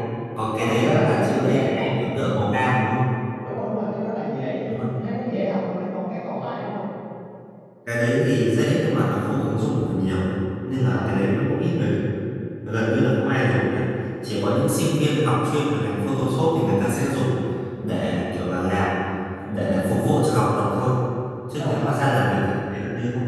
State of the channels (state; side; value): identical; both; correlation 1.00